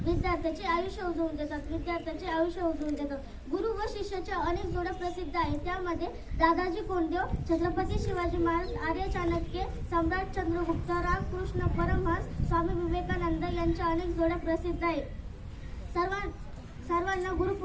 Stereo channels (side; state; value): both; identical; correlation 1.00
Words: विद्यार्थ्याचे आयुष्य उजवून देतात। गुरु व शिष्याच्या अनेक जोड्या प्रसिद्ध आहेत, त्यामध्ये दादाजी कोंडदेव, छत्रपती शिवाजी महाराज, आर्य चाणक्य, सम्राट चंद्रगुप्त, रामकृष्ण परमहंस, स्वामी विवेकानंद यांच्या अनेक जोड्या प्रसिद्ध आहेत। सर्वांना